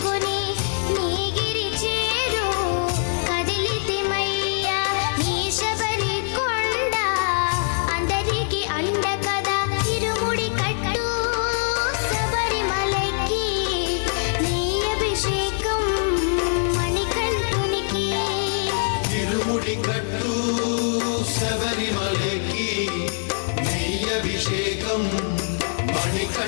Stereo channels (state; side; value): silent; right; 62 dB below the other